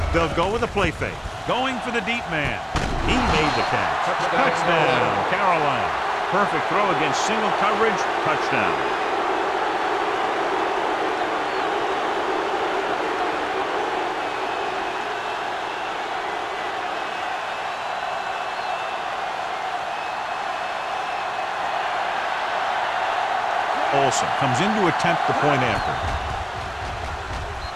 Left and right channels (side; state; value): both; identical; correlation 1.00